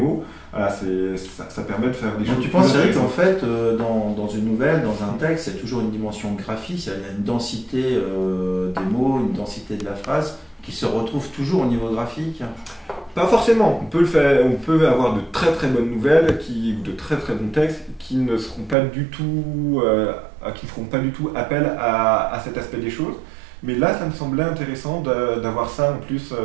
voilà, ça permet de faire des choses. Donc tu penses, Eric, qu'en fait, dans une nouvelle, dans un texte, il y a toujours une dimension graphique, il y a une densité des mots, une densité de la phrase qui se retrouve toujours au niveau graphique? Pas forcément. On peut avoir de très très bonnes nouvelles, de très très bons textes qui ne feront pas du tout appel à cet aspect des choses. Mais là, ça me semblait intéressant d'avoir ça en plus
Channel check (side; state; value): left; drops out; at 18.8 s